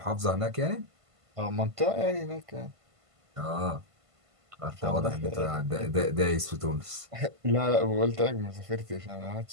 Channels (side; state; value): left; late; 1.5 ms